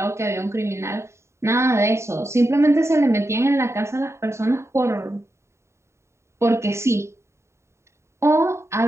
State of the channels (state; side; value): late; left; 0.13 ms